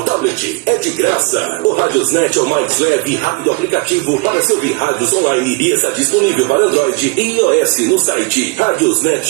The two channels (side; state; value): left; quieter; 27.5 dB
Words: tablet. É de graça. O Radiosnet é o mais leve e rápido aplicativo para se ouvir rádios online e está disponível para Android e iOS no site